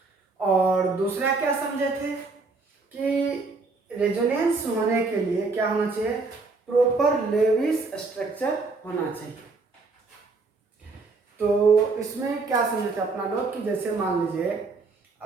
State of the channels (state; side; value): quieter; left; 3.9 dB